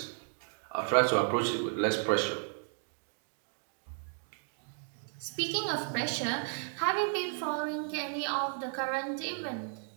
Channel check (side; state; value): left; silent; 55 dB below the other